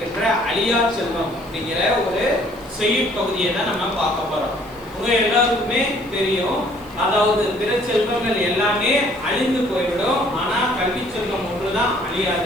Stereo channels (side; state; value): left; noise; hiss, 26 dB below the sound